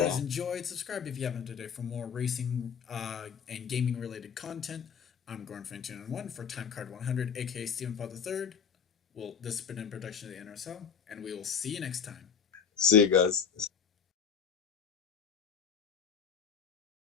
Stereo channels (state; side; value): quieter; right; 7.1 dB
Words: enjoyed. Subscribe if you haven't today for more racing and gaming related content. I'm Gorn291 for Time Card 100, aka Steven Paul III. This has been a production of the NRSL, and we will see you next time. See you guys.